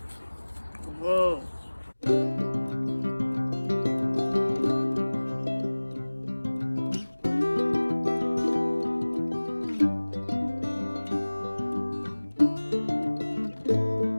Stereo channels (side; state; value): both; inverted; correlation -1.00